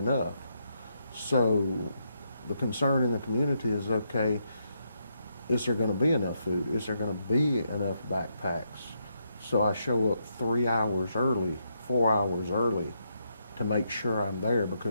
So the concern in the community is, okay, is there going to be enough food? Is there going to be enough backpacks? So I show up 3 hours early, 4 hours early, to make sure I'm there,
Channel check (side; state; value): both; inverted; correlation -0.80